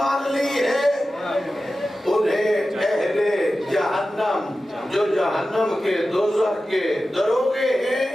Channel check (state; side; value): normal; both; correlation 0.94